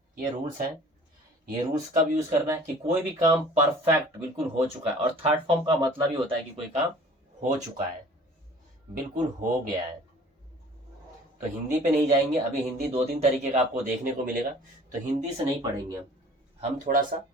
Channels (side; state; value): both; normal; correlation 0.49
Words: ये रूल्स हैं। ये रूल्स कब यूज करना है कि कोई भी काम परफेक्ट बिल्कुल हो चुका है। और थर्ड फॉर्म का मतलब ही होता है कि कोई काम हो चुका है, बिल्कुल हो गया है। तो हिंदी पे नहीं जाएंगे अभी। हिंदी 2-3 तरीके का आपको देखने को मिलेगा, तो हिंदी से नहीं पढ़ेंगे हम थोड़ा सा